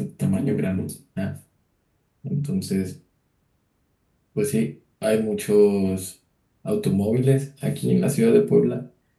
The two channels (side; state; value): both; identical; correlation 1.00